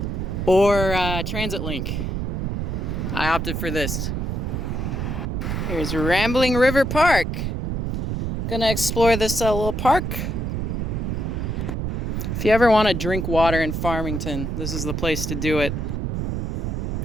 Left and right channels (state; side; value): noise; right; rumble, 2 dB below the sound